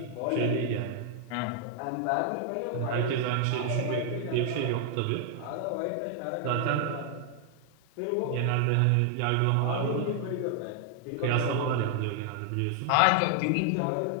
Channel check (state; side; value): different; both; correlation 0.00